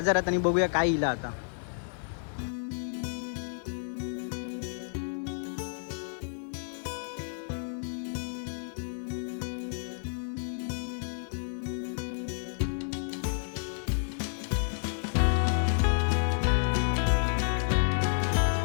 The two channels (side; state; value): right; silent; 57 dB below the other